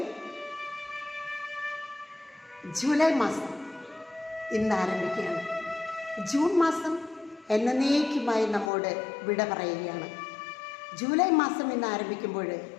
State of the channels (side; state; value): right; drops out; at 8.7 s